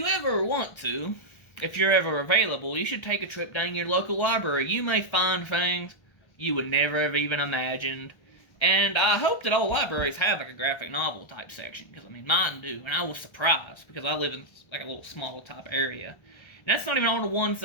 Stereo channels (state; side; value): late; right; 1.3 ms